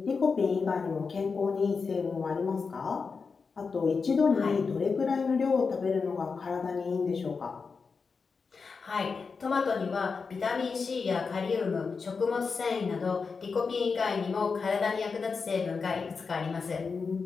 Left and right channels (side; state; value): right; quieter; 5.0 dB